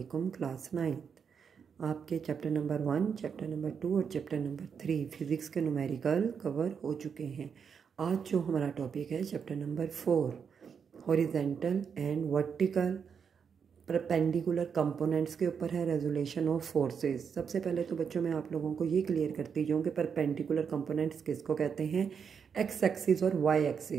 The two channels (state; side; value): quieter; left; 6.7 dB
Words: क्लास 9 आपके चैप्टर नंबर 1, चैप्टर नंबर 2 और चैप्टर नंबर 3 फिज़िक्स के न्यूमेरिकल कवर हो चुके हैं। आज जो हमारा टॉपिक है chapter number 4 horizontal and vertical perpendicular components के ऊपर है, रेजोल्यूशन ऑफ फोर्सेस। सबसे पहले तो बच्चों मैं आप लोगों को ये क्लियर करती जाऊँ कि परपेंडिकुलर कंपोनेंट्स किसको कहते हैं। एक्स एक्सिस और y